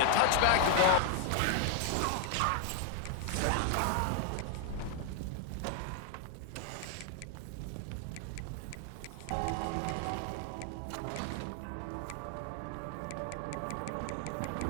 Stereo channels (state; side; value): different; both; correlation 0.00